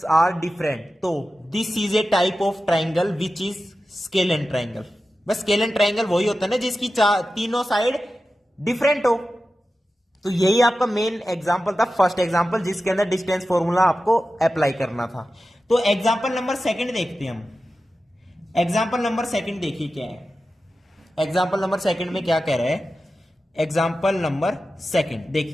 are different, तो this is a type of triangle which is scalene triangle। बस स्केलन ट्राइंगल वही होता है ना जिसकी तीनों साइड डिफरेंट हो। तो यही आपका मेन एग्जांपल था, फर्स्ट एग्जांपल, जिसके अंदर डिस्टेंस फॉर्मूला आपको अप्लाई करना था। तो एग्जांपल नंबर 2 देखते हैं हम। एग्जांपल नंबर 2 देखिए क्या है। एग्जांपल नंबर 2 में क्या कह रहा है, एग्जांपल नंबर 2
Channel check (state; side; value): normal; both; correlation 0.93